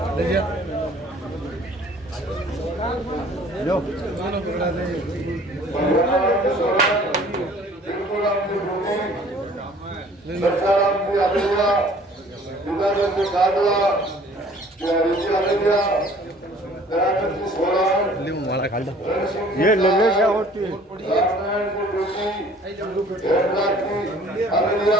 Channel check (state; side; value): normal; both; correlation 0.53